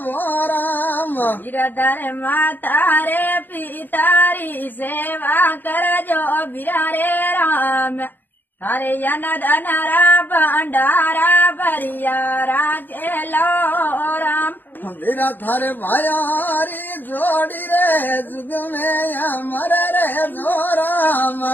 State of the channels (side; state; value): right; late; 0.091 ms